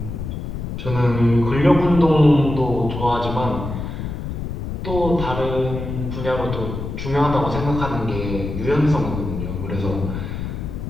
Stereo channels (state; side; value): noise; left; rumble, 5 dB below the sound